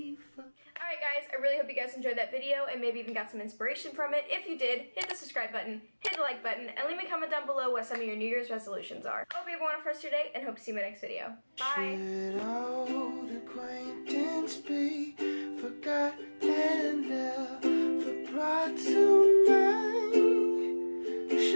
for... Alright guys, I really hope you guys enjoyed that video and maybe even got some inspiration from it. If you did, hit the subscribe button, hit the like button, and leave me a comment down below what some of your New Year's resolutions are. Hope you have a wonderful rest of your day, and hope to see you in my next video. Bye! Should old acquaintance be forgotten and never brought to mind?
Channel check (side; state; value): both; inverted; correlation -1.00